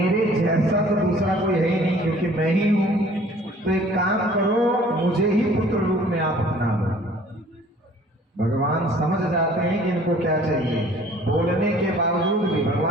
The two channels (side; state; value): both; normal; correlation 0.52